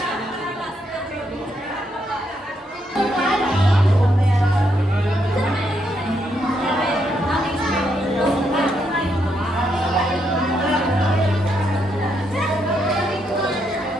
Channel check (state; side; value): normal; both; correlation 0.77